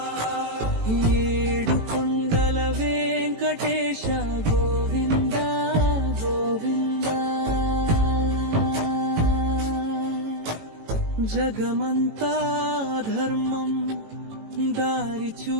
ఏడు కొండల వెంకటేశ గోవింద గోవింద, జగమంతా ధర్మం దారి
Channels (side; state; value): left; late; 18 ms